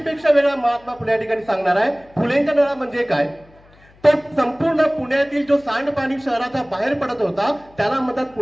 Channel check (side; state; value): left; noise; hum, 28 dB below the sound